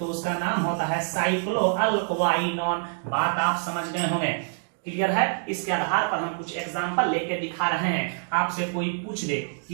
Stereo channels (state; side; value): silent; left; digital silence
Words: उसका नाम होता है साइक्लो अल्क्वाइनॉन। बात आप समझ गए होंगे, क्लियर है। इसके आधार पर हम कुछ एग्जांपल लेके दिखा रहे हैं। आपसे कोई पूछ दे